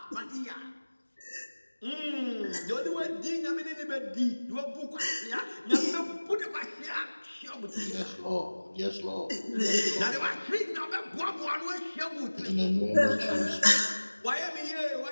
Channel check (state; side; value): inverted; both; correlation -1.00